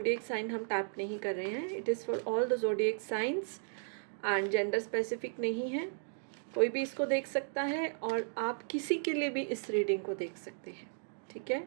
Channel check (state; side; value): silent; left; digital silence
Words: साइन हम टैप नहीं कर रहे हैं। It is for all the zodiac signs and gender specific नहीं है। कोई भी इसको देख सकता है और आप किसी के लिए भी इस रीडिंग को देख सकते हैं, ठीक है?